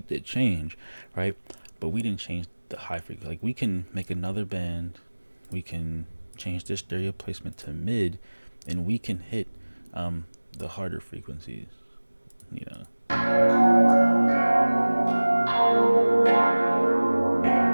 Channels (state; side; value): inverted; both; correlation -1.00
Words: did change, right? But we didn't change the high frequency. Like we can make another band, we can change the stereo placement to mid, and we can hit the harder frequencies, you know.